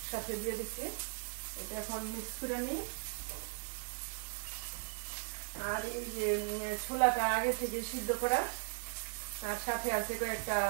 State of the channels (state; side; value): silent; left; digital silence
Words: দিয়ে দিচ্ছি। এটা এখন মিক্স করে নিই। আর এই যে ছোলাটা আগে থেকে সিদ্ধ করা, আর সাথে আছে কয়েকটা